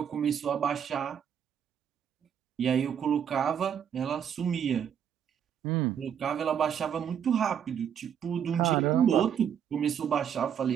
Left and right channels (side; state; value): left; quieter; 8.5 dB